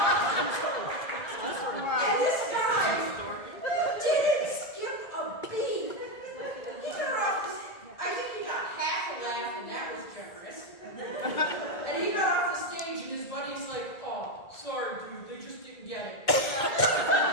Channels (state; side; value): late; right; 2.2 ms